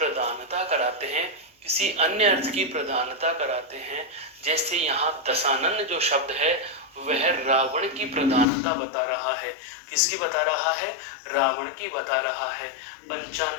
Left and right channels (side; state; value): right; drops out; at 8.5 s